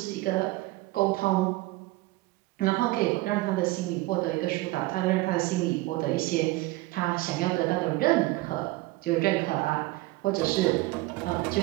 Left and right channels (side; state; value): left; quieter; 19.8 dB